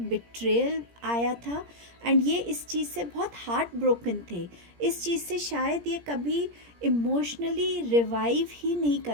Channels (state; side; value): late; left; 17 ms